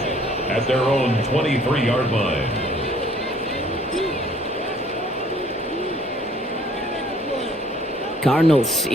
at their own 23-yard line. Cardinals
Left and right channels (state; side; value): normal; both; correlation 0.58